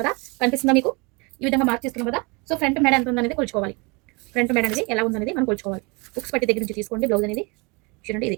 కదా, కనిపిస్తుందా మీకు? ఈ విధంగా మార్క్ చేసుకున్నాం కదా. సో ఫ్రంట్ మెడ ఎంత ఉందనేది కొలుచుకోవాలి. ఫ్రంట్ మెడ అనేది ఎలా ఉందనేది మనం కొలుచుకోవాలి. ఉక్స్ పట్టి దగ్గర నుంచి తీసుకోండి బ్లౌజ్ అనేది. చూడండి, ఇది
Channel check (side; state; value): left; quieter; 29.0 dB